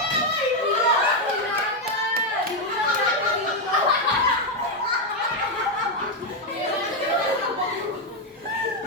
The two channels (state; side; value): normal; both; correlation 0.04